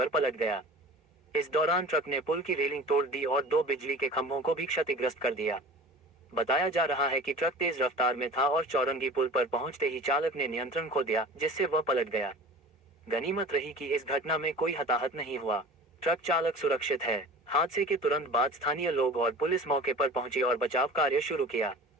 पलट गया। इस दौरान ट्रक ने पुल की रेलिंग तोड़ दी और 2 बिजली के खंभों को भी क्षतिग्रस्त कर दिया। बताया जा रहा है कि ट्रक तेज रफ्तार में था और चौरंगी पुल पर पहुंचते ही चालक ने नियंत्रण खो दिया, जिससे वह पलट गया। गनीमत रही कि इस घटना में कोई हताहत नहीं हुआ। ट्रक चालक सुरक्षित है। हादसे के तुरंत बाद स्थानीय लोग और पुलिस मौके पर पहुंची और बचाव कार्य शुरू किया।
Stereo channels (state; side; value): normal; both; correlation 0.39